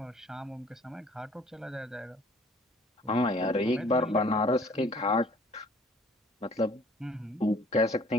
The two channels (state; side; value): normal; both; correlation 0.55